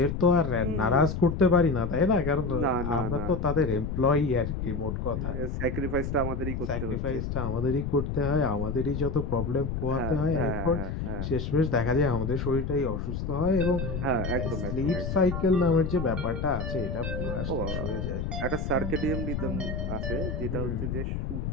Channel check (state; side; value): noise; left; rumble, 3 dB below the sound